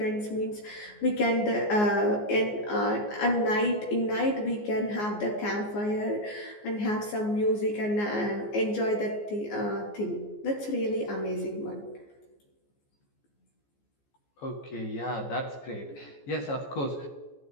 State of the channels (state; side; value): late; right; 14 ms